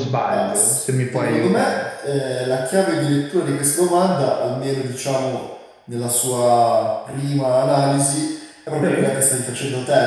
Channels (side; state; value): both; identical; correlation 1.00